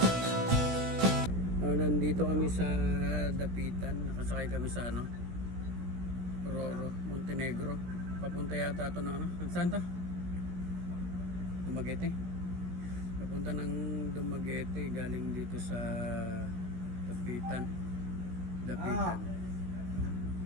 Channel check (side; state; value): left; late; 17 ms